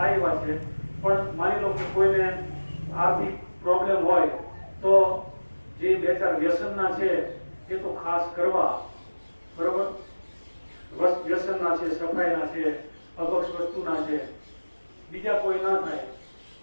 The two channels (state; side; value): inverted; both; correlation -1.00